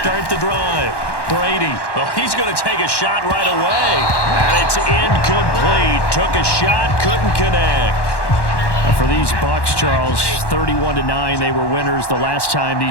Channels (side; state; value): right; late; 1.1 ms